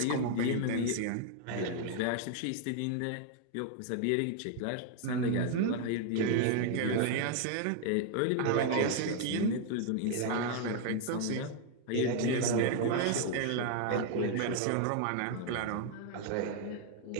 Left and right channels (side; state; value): both; different; correlation 0.00